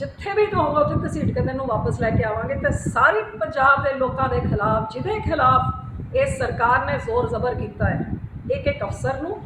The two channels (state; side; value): identical; both; correlation 1.00